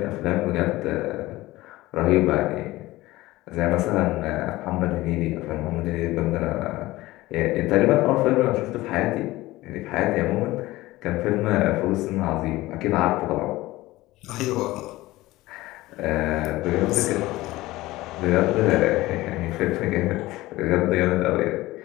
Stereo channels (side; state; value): right; quieter; 18.4 dB